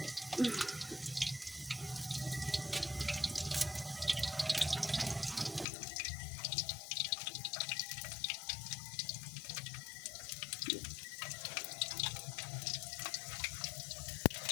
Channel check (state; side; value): drops out; right; at 5.7 s